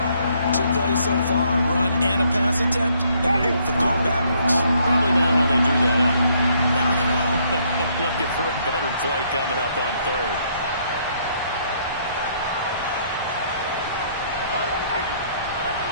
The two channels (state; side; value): inverted; both; correlation -0.68